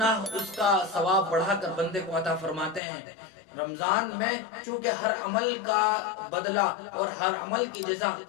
اس کا ثواب بڑھا کر بندے کو عطا فرماتے ہیں۔ رمضان میں چونکہ ہر عمل کا بدلہ اور ہر عمل کی جزا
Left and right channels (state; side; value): drops out; right; at 2.8 s